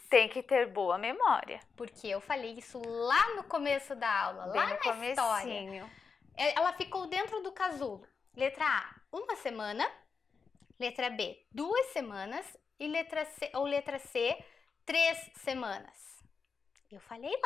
Tem que ter boa memória. Porque eu falei isso lá no começo da aula, lá na história. Ela ficou dentro do casulo. Letra A, 1 semana. Letra B, 2 semanas. E letra C, 3 semanas. Eu falei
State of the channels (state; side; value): quieter; right; 5.4 dB